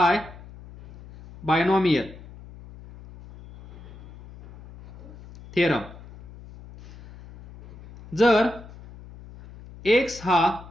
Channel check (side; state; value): left; noise; hum, 19 dB below the sound